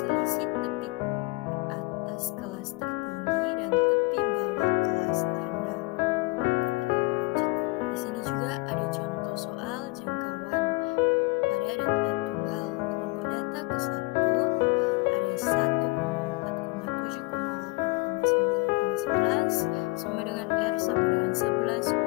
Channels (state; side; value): quieter; right; 24.3 dB